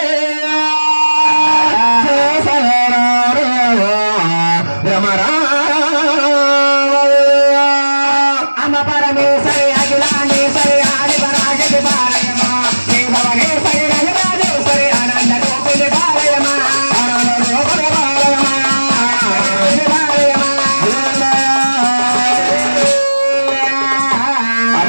అమ్మ పరమేశ్వరి అఖిలాండేశ్వరి ఆది పరాశక్తి పాలయమా భువనేశ్వరి రజరాజేశ్వరి ఆనంద రూపిణి పాలయమా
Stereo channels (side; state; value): both; inverted; correlation -1.00